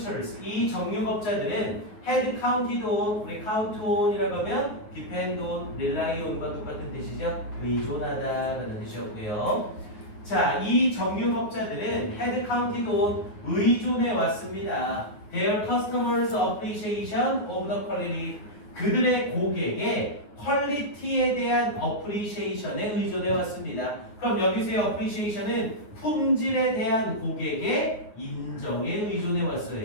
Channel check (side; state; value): right; late; 9.5 ms